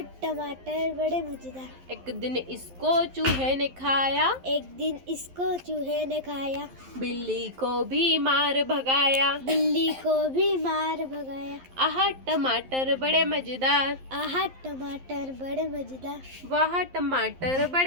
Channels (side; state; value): left; late; 11 ms